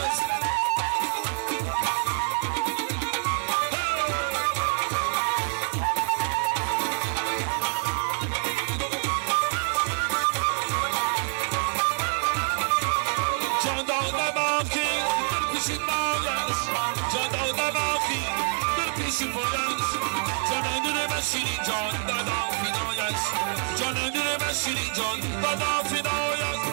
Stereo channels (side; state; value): left; silent; 61 dB below the other